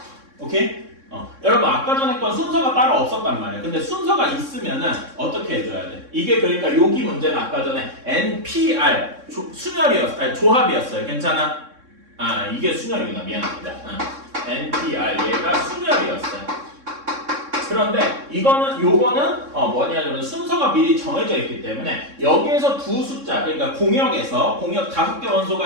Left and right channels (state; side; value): late; left; 3.6 ms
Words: 오케이? 여러분 아까 전에 건 순서가 따로 없었단 말이에요. 근데 순서가 있으면은 어떻게 해줘야 돼? 이게 그러니까 여기 문제는 아까 전에 NPR 조합이었어요. 괜찮아? 이게 순열이구나. 미안합니다. NPR 얘가 순열이었어요. 그런데 요거는 뭐냐면 순서가 미리 정해져 있기 때문에 여기에서 두 숫자, 그러니까 공역 5개 원소가